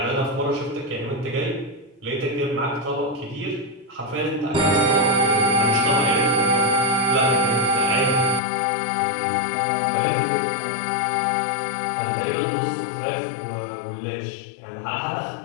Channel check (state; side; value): drops out; right; at 8.4 s